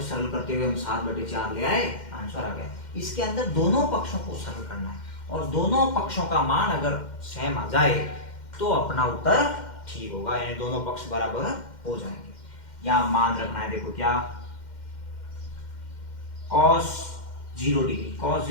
सरल करते हुए हम 7/4 ले आए, आंसर आ गया। इसके अंदर दोनों पक्षों को सरल करना है और दोनों पक्षों का मान अगर सेम आ जाए तो अपना उत्तर ठीक होगा, यानी दोनों पक्ष बराबर हो जाएंगे। यहाँ मान रखना है, देखो क्या cos 0 डिग्री, cos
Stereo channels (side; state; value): right; late; 2.1 ms